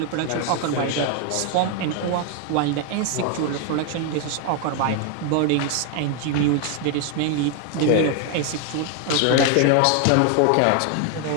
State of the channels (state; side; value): different; both; correlation 0.01